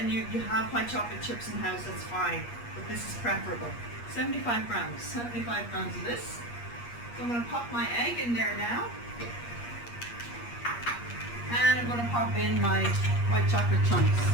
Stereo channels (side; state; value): right; late; 8.4 ms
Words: you have white chocolate chips in the house, that's fine, but this is preferable. 75 grams of this. So I'm going to pop my egg in there now, and I'm going to pop in my white chocolate chunks.